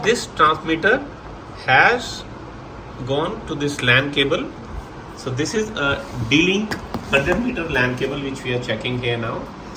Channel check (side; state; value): both; identical; correlation 1.00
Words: this transmitter has gone to this LAN cable. So this is a D-Link 100-meter LAN cable which we are checking here now.